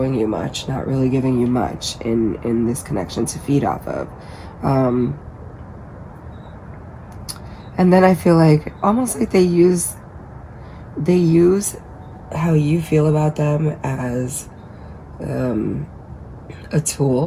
you much, not really giving you much in this connection to feed off of. And then I feel like almost like they use how you feel about them as a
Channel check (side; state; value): both; identical; correlation 1.00